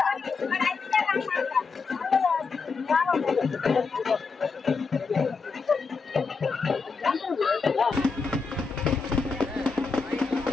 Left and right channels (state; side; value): quieter; right; 4.7 dB